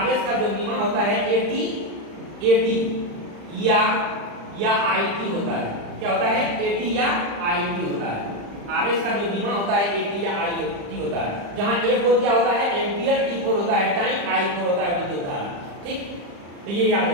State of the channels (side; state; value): left; late; 35 ms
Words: का जो बीमा होता है AT या IT होता है। क्या होता है, AT या IT होता है। आवेश का जो बीमा होता है AT या IT होता है, जहां A4 क्या होता है, एम्पियर, T4 होता है टाइम, I4 होता है विद्युत धारा। ठीक, तो ये याद